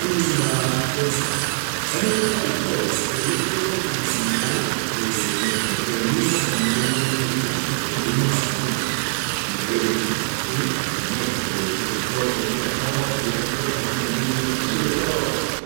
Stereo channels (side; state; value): left; silent; 64 dB below the other